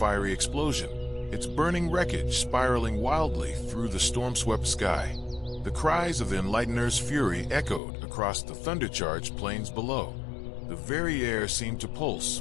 explosion, its burning wreckage spiraling wildly through the storm-swept sky. The cries of the Enlightener's fury echoed across the thunder-charged plains below. The very air seemed to pulse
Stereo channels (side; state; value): right; drops out; at 7.8 s